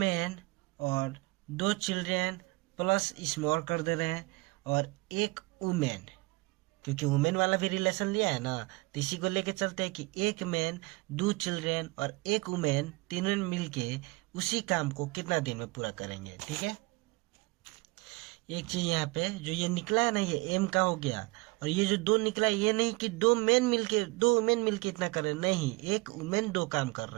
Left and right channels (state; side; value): quieter; left; 23.9 dB